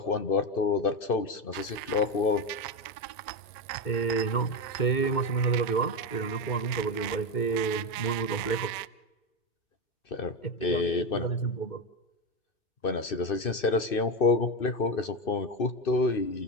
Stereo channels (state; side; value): late; right; 1.9 ms